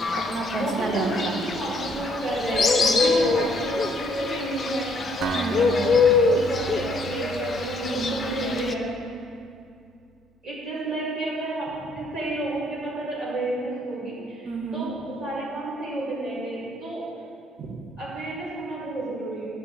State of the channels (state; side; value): normal; both; correlation 0.66